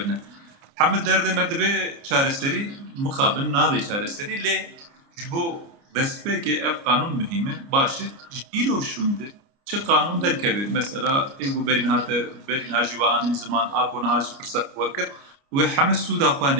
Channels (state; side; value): late; left; 29 ms